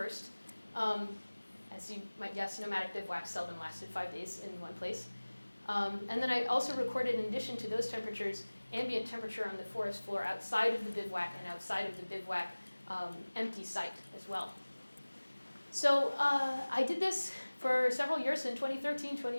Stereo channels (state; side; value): inverted; both; correlation -1.00